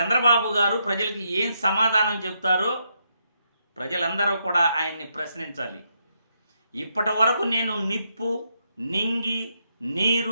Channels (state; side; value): inverted; both; correlation -0.79